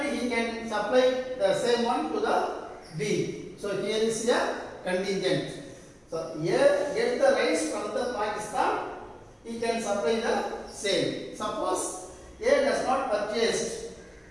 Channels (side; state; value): both; identical; correlation 1.00